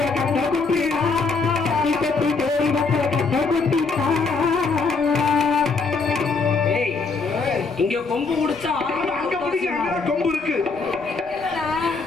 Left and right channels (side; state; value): right; quieter; 4.3 dB